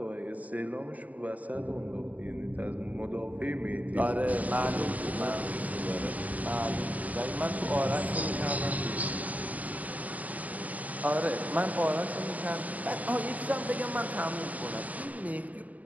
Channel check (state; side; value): late; left; 0.073 ms